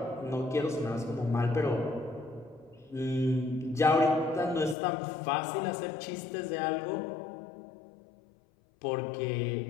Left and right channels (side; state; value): right; drops out; at 4.8 s